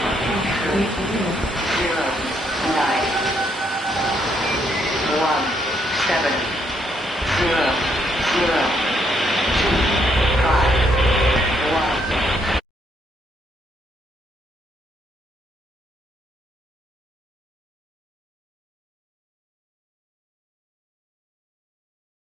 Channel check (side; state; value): both; normal; correlation 0.73